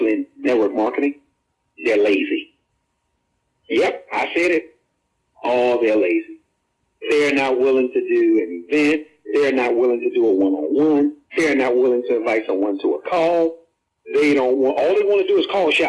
in network marketing, they're lazy. Yep, I said it. Oh, they're lazy. They're not willing to do an event. They're not willing to do a one-on-one. They're not willing to invite someone to a call. They don't want, all they want to do is call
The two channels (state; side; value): identical; both; correlation 1.00